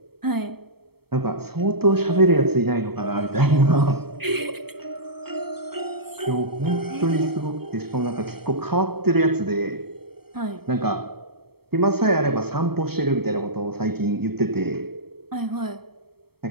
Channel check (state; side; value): late; left; 0.96 ms